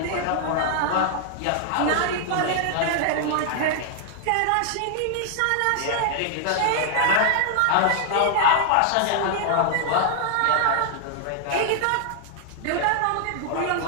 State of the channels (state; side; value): different; both; correlation -0.01